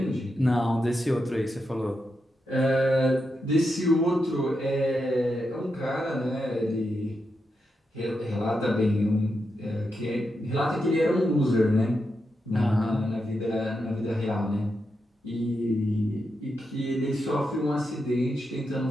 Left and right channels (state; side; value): normal; both; correlation 0.86